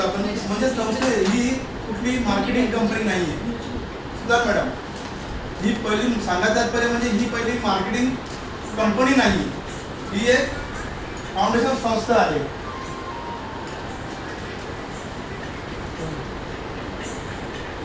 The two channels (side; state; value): both; identical; correlation 1.00